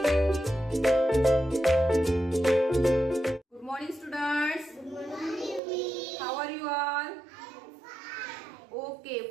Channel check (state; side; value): drops out; left; at 5.6 s